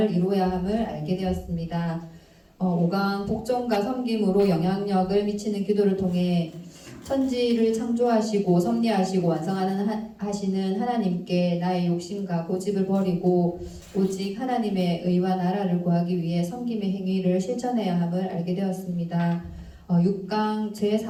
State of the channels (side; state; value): both; identical; correlation 1.00